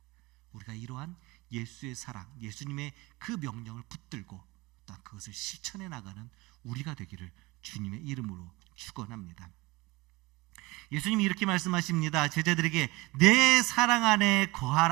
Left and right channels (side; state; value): left; quieter; 21.9 dB